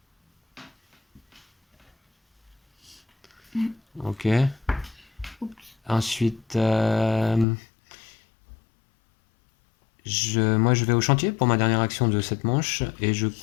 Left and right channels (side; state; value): right; drops out; at 7.5 s